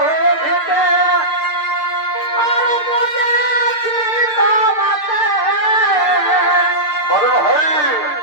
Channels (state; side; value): late; right; 6.6 ms